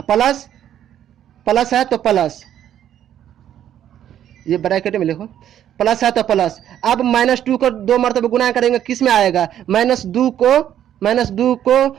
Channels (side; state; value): left; quieter; 10.7 dB